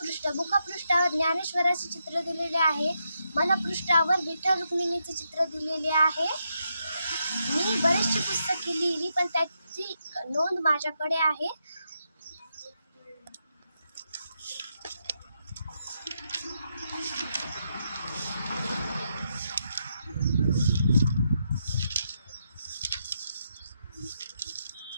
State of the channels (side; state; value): both; inverted; correlation -0.82